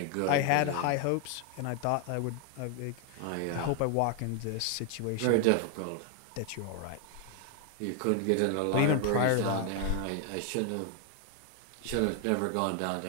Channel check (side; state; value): both; different; correlation 0.00